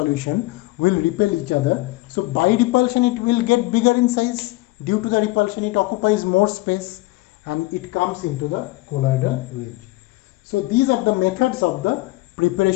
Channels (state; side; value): quieter; right; 20.6 dB